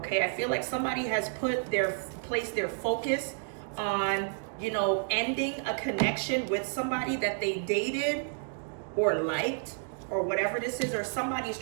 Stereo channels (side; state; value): left; silent; digital silence